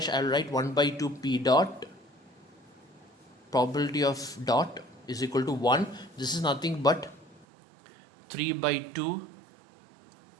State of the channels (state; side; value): drops out; left; at 7.5 s